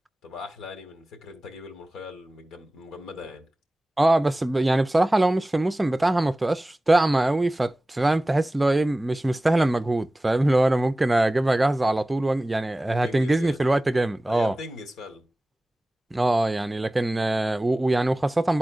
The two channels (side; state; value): both; normal; correlation 0.97